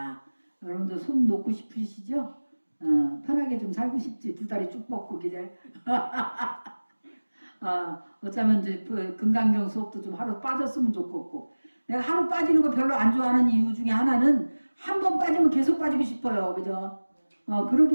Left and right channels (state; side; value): inverted; both; correlation -1.00